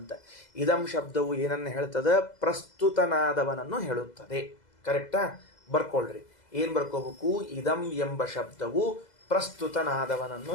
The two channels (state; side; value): late; right; 2.0 ms